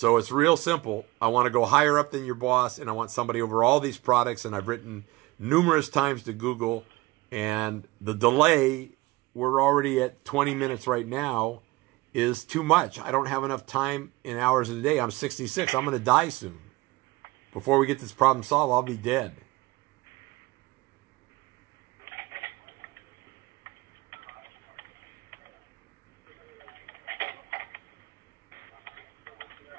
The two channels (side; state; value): left; quieter; 21.0 dB